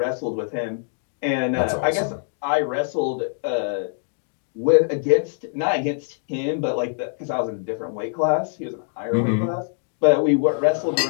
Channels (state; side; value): silent; right; digital silence